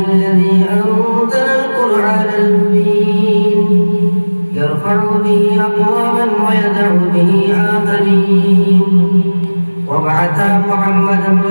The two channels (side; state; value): both; inverted; correlation -1.00